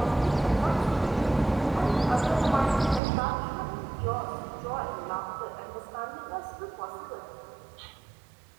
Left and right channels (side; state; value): left; drops out; at 3.0 s